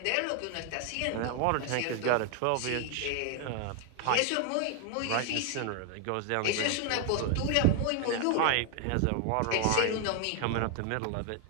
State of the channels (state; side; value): different; both; correlation 0.00